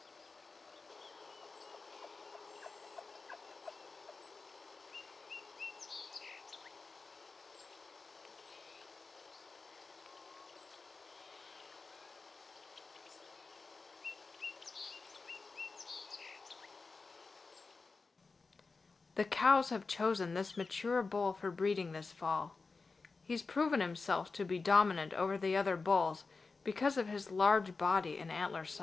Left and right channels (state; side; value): quieter; right; 4.2 dB